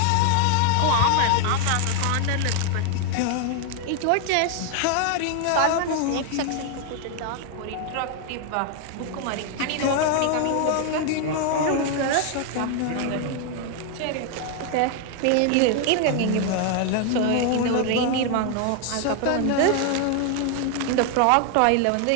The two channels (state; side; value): different; both; correlation 0.00